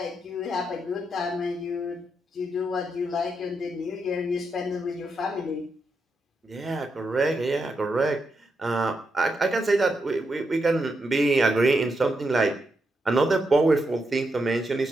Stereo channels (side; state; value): both; normal; correlation 0.83